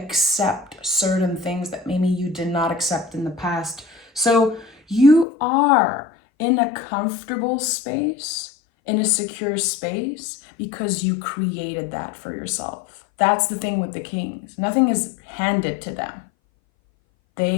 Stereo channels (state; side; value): drops out; right; at 5.2 s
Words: certain things that maybe you did not accept in the past. So you are in a comfortable space, in a secure space, because you created that for yourself. That's the thing with the kings. Nothing is handed to them.